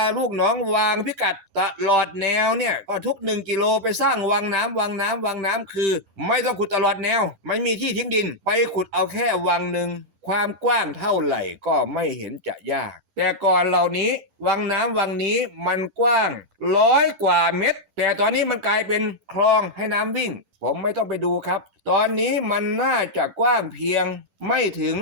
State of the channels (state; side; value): late; left; 10 ms